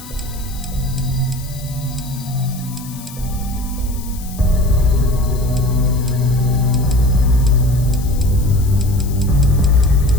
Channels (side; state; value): left; noise; hiss, 17 dB below the sound